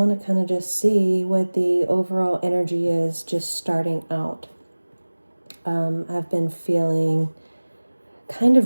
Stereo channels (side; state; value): both; inverted; correlation -1.00